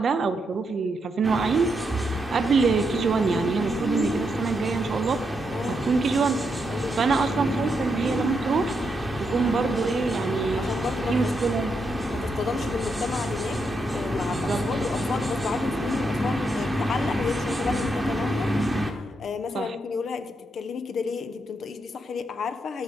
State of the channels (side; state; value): both; normal; correlation 0.81